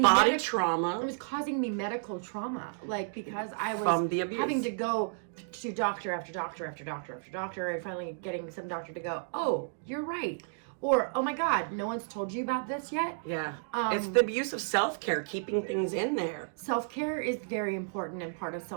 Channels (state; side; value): silent; left; digital silence